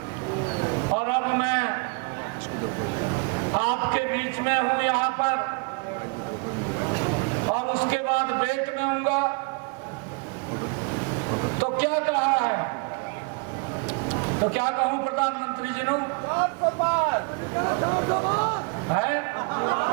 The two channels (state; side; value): quieter; left; 33.5 dB